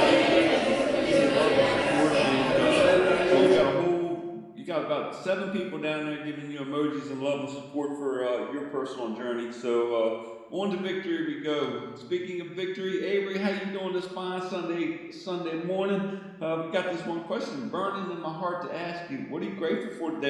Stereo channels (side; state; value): both; identical; correlation 1.00